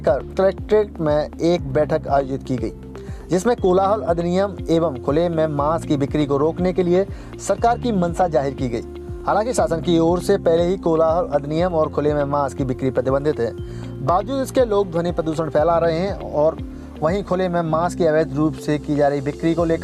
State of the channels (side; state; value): both; identical; correlation 1.00